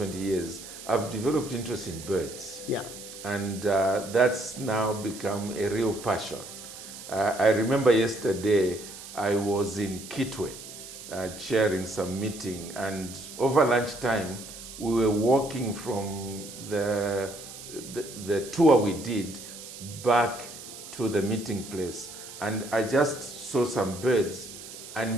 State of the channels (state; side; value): noise; right; hiss, 13 dB below the sound